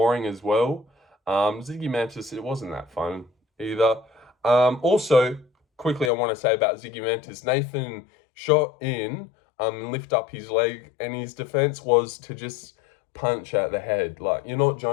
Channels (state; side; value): drops out; right; at 6.1 s